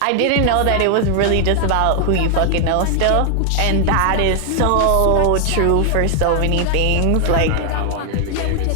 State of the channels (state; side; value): different; both; correlation 0.00